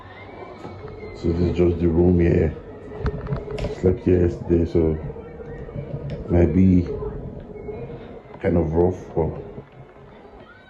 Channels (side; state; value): both; identical; correlation 1.00